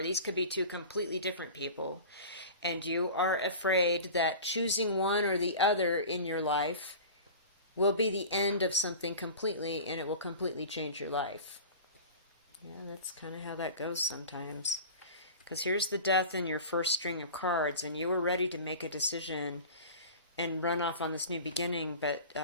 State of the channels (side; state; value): both; inverted; correlation -0.36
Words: these could be two completely different people. And you are afraid that choosing one or the other in your life will be the end of something completely, and it will completely change your life. Yeah, that's kind of how that goes sometimes. Because here's the death in your first string of cards, and you were ready to make a decision and run off on this new beginning, but